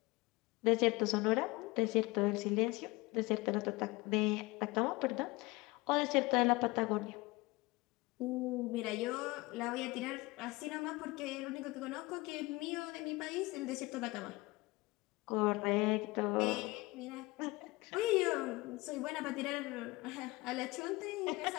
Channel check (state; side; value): quieter; right; 22.6 dB